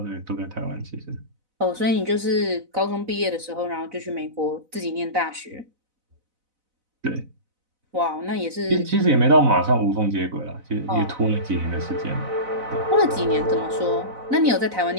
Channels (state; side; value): late; left; 4.0 ms